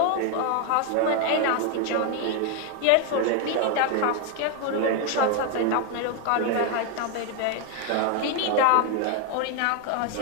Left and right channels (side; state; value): both; different; correlation 0.01